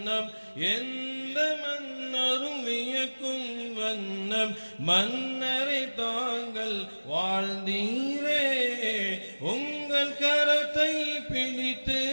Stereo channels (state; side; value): inverted; both; correlation -1.00